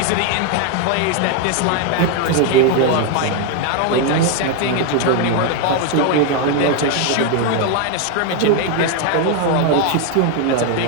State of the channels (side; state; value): both; different; correlation 0.01